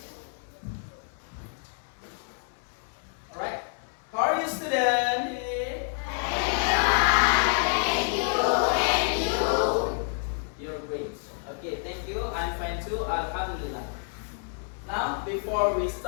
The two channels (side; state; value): right; silent; 56 dB below the other